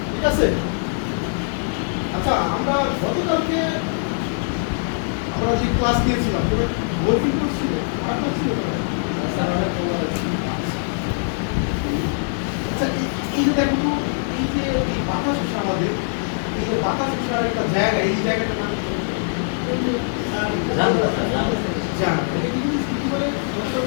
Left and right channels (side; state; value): right; silent; digital silence